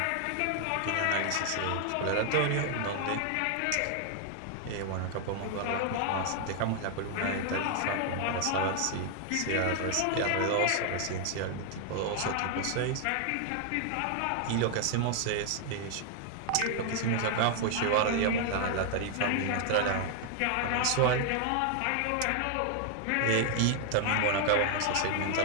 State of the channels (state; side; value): different; both; correlation 0.00